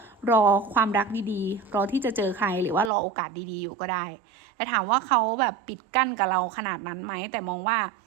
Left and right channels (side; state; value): left; drops out; at 2.9 s